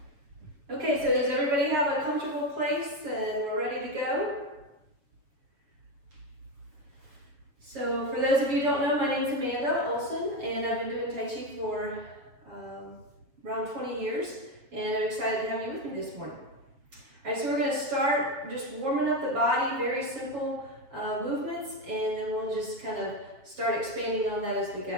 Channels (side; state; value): left; late; 7.4 ms